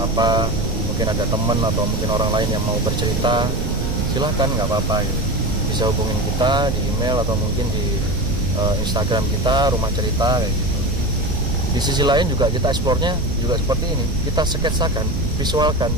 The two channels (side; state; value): right; noise; rumble, 2 dB below the sound